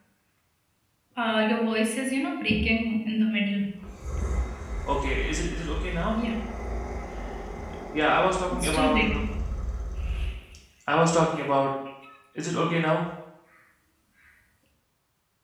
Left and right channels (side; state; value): both; identical; correlation 1.00